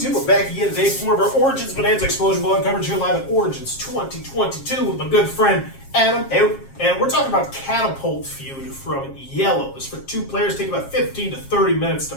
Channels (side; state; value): right; late; 7.4 ms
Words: we're back again today for more of our Origins Bonanza Explosion Ball coverage here live at Origins 2022 with my good friend Adam. Hey. And we're talking about Catapult Feud from Iello. This for 2 players, take about 15 to 30 minutes to